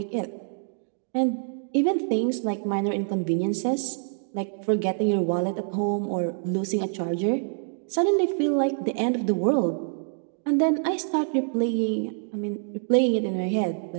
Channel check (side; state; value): left; silent; digital silence